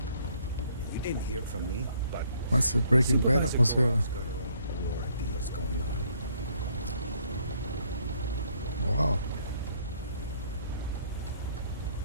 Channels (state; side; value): inverted; both; correlation -0.66